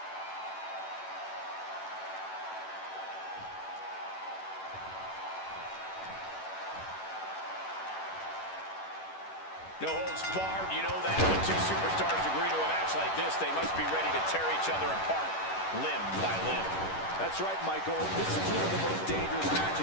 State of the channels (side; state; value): right; late; 10 ms